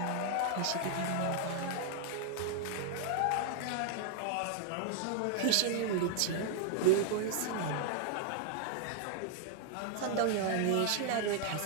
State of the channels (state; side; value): different; both; correlation 0.00